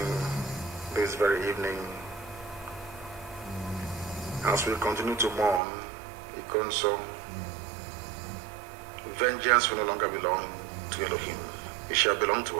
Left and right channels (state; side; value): drops out; left; at 5.6 s